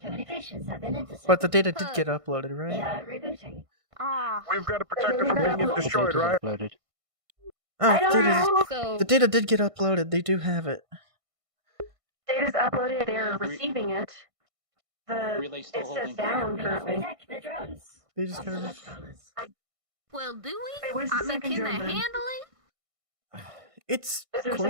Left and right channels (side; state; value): left; late; 1.5 ms